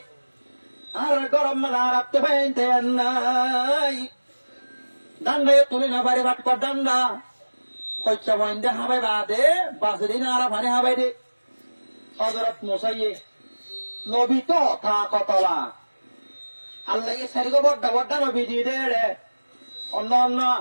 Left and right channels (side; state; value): both; inverted; correlation -1.00